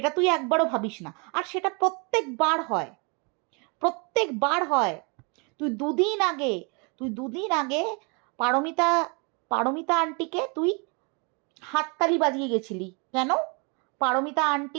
তুই একবারও ভাবিস না, আর সেটা প্রত্যেকবার হয়। তুই দুদিন আগে পারমিতা আন্টিকে তুই হাততালি বাজিয়ে গেছিলি। কেন? পারমিতা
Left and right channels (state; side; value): quieter; left; 33.1 dB